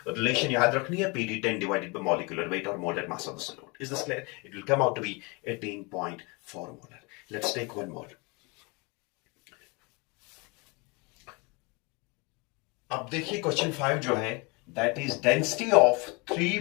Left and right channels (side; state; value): right; quieter; 28.7 dB